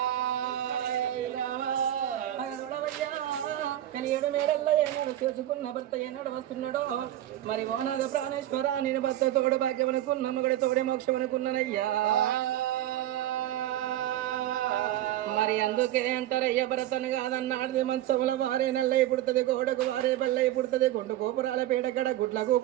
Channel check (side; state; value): left; quieter; 13.0 dB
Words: ఏడు మేడల్లో ఏనాడు చేసుకున్న భర్త ఏనాడు వస్తున్నాడో మరి ఓనాగ ప్రాణేశ్వర నేను భర్త తోడు భాగ్యమనుకున్న మగడి తోడే మోక్షమనుకున్నానయ్యా. మరి అందుకే అంటారయ్య భరతను కాదన్నాడు మంచముల వారే నల్లై పుడుతుంది, గోడకు వారే బల్లై పుడుతుంది, గుండు గోపురాల పేడగడ గుడ్ల